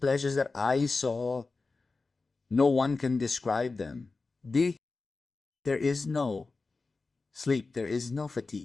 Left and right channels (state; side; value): quieter; right; 3.9 dB